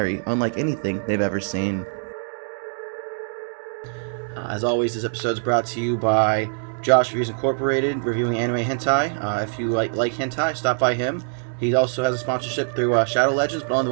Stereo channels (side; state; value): left; silent; digital silence